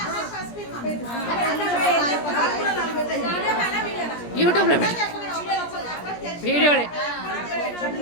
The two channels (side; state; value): right; late; 17 ms